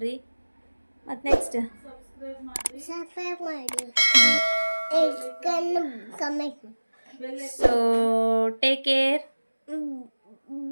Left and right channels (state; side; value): inverted; both; correlation -1.00